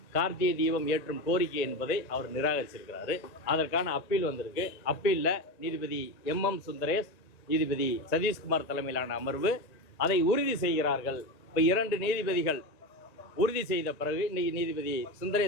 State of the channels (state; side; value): late; right; 1.8 ms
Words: கார்த்திகை தீபம் ஏற்றும் கோரிக்கை என்பதை அவர் நிராகரிச்சிருக்கிறாரு. அதற்கான அப்பீல் வந்திருக்கு. அப்பீலில் நீதிபதி MM சுந்தரேஷ், நீதிபதி சதீஷ்குமார் தலைமையிலான அமர்வு அதை உறுதி செய்கிறார்கள். இப்போ 2 நீதிபதிகள் உறுதி செய்த பிறகு இன்னைக்கு நீதிபதி